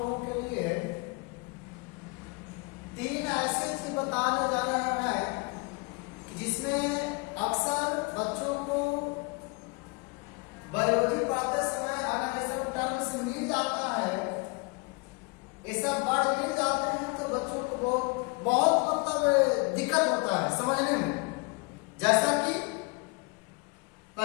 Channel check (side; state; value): right; quieter; 29.7 dB